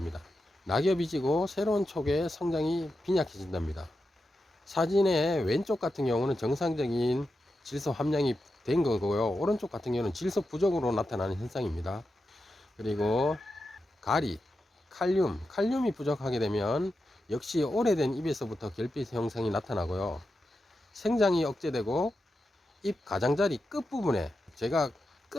낙엽이 지고 새로운 촉의 성장이 빈약해진답니다. 사진의 왼쪽 같은 경우는 정상적인 질소 함량이 된 거고요. 오른쪽 같은 경우는 질소 부족으로 나타나는 현상입니다. 그리고 가리, 칼륨이 부족하게 되면 역시 오래된 잎에서부터 결핍 형성이 나타나고요. 생장이 억제되고 잎 가장자리 끝부분에, 제가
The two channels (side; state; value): both; normal; correlation 0.89